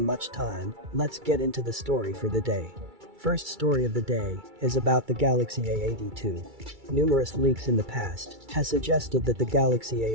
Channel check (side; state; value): left; late; 2.3 ms